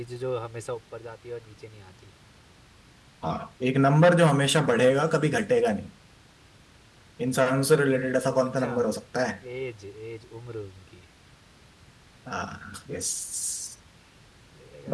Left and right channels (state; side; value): identical; both; correlation 1.00